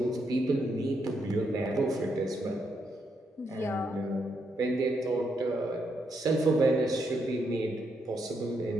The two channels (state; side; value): normal; both; correlation 0.79